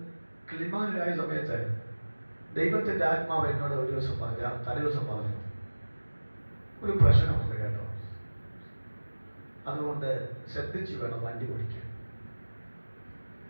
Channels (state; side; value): inverted; both; correlation -1.00